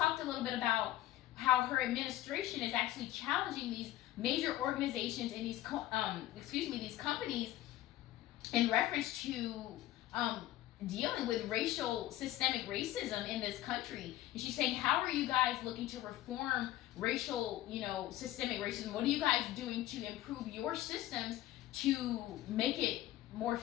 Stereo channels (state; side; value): quieter; right; 14.9 dB